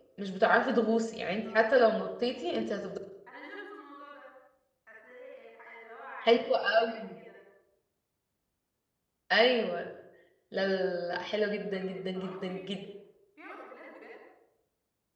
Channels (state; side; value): identical; both; correlation 1.00